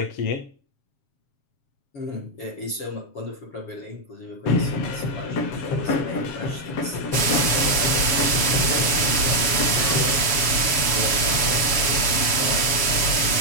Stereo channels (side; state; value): right; late; 7.3 ms